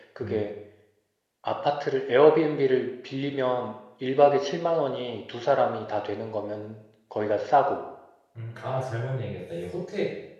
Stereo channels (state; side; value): identical; both; correlation 1.00